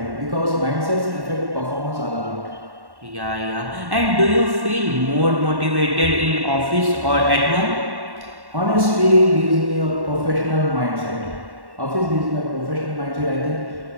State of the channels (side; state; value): left; late; 1.1 ms